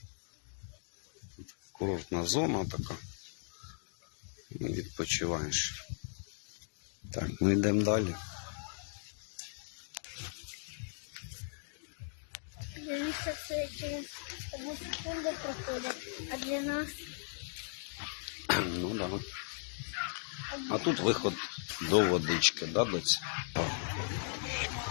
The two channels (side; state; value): right; silent; digital silence